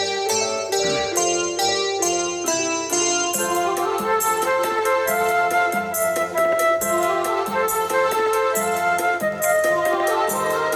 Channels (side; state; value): both; identical; correlation 1.00